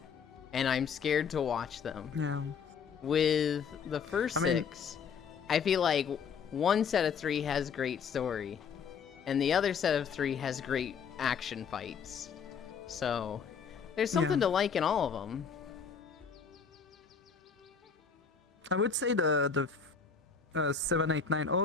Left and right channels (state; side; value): quieter; right; 6.2 dB